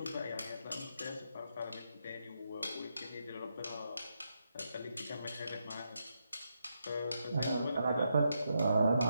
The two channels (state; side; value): inverted; both; correlation -0.82